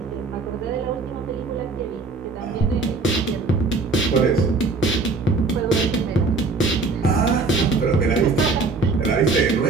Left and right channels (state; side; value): quieter; left; 3.9 dB